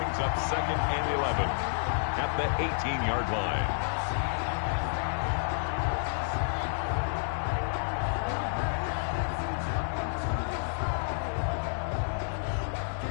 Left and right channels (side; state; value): right; silent; digital silence